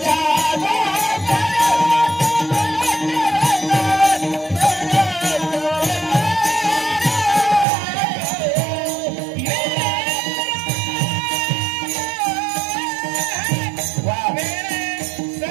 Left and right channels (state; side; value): drops out; left; at 7.7 s